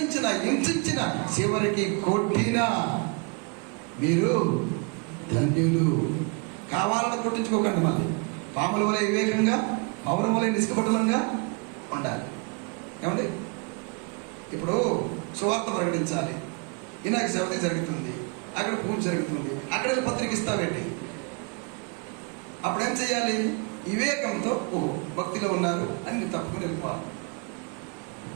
హింసించినా, చివరికి కొట్టినా మీరు ధన్యులు. కావాలని కొట్టించుకోకండి. మళ్ళీ పాముల వలె వివేకంగా, పౌరం వలె నిష్కపటలంగా ఉండాలి. ఏమండి, ఇప్పుడు సువార్త ప్రకటించాలి, వినాయక చవితి జరుగుతుంది, అక్కడ పూజ జరుగుతుంది, అక్కడ పత్రిక ఇస్తావేంటి? అప్పుడేం చేయాలి? వివేకంతో ఓహో భక్తిలో ఉన్నారు అని నువ్వు తప్పుకుని వెళ్ళిపోవాలి.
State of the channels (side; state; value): left; quieter; 31.4 dB